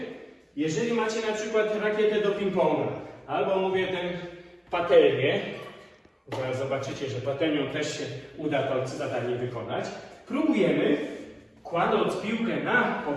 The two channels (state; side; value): identical; both; correlation 1.00